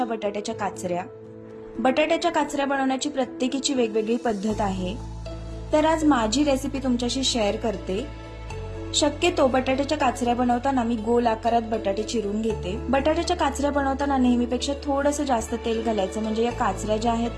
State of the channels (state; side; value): identical; both; correlation 1.00